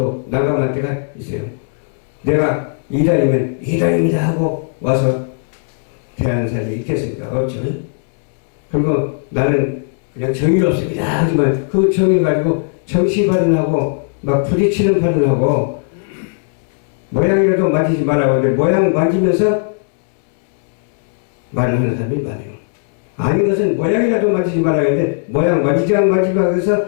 난감할 때가 있어요. 내가 이단이면 이단입니다 하고 와서 대하는 사람이 있겠습니까? 없죠. 그리고 나는 그냥 정의롭습니다 하지만 그 정의 가지고 정치 발언하고 막 부딪히는 발언하고 모양이라도 만지지 말라고 하는데 모양 만지면서 말을 하는 사람이 많아요. 아닌 것은 모양이라도 만지지 말라고 하는데 모양 만지지 안 만지지 말고 해서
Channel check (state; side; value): silent; right; 68 dB below the other